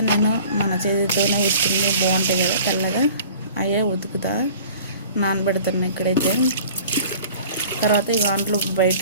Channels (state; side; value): inverted; both; correlation -0.46